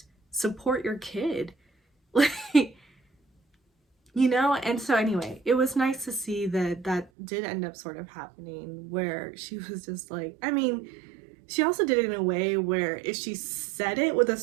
support your kid. Like, you know? And so anyway, it was nice to see that that did end up sort of happening, where she was just like, I mean, she also did it in a way where if she said it with a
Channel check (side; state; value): left; drops out; at 7.1 s